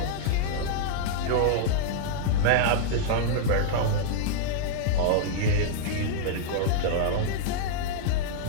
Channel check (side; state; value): both; different; correlation -0.01